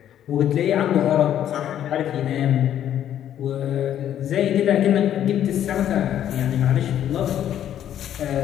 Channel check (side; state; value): right; quieter; 10.7 dB